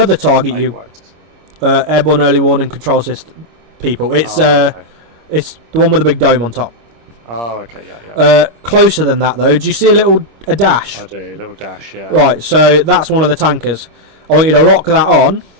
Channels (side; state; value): left; late; 26 ms